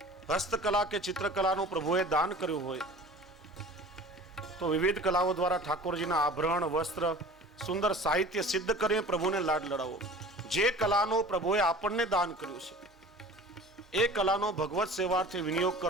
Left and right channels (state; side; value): normal; both; correlation 0.42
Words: હસ્તકલા કે ચિત્રકલાનું પ્રભુએ દાન કર્યું હોય તો વિવિધ કલાઓ દ્વારા ઠાકોરજીના આભરણ, વસ્ત્ર, સુંદર સાહિત્ય સિદ્ધ કરીને પ્રભુને લાડ લડાવો. જે કલાનું પ્રભુએ આપણને દાન કર્યું છે એ કલાનો ભગવત સેવાથી વિનિયોગ